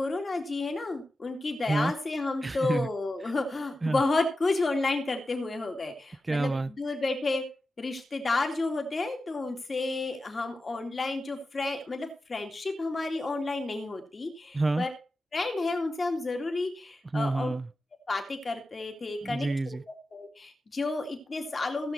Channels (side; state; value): both; normal; correlation 0.92